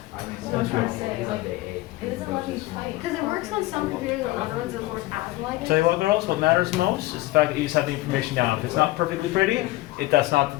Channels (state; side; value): quieter; right; 18.4 dB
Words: That's good. It doesn't let me type. Because it works on some computers and other ones that work as like it. Tell you what, girls, what matters most is the fact that you just have the information down. If it's not perfectly pretty, that's not the